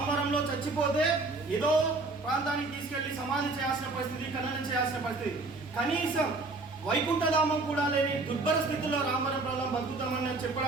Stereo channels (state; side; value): quieter; left; 3.4 dB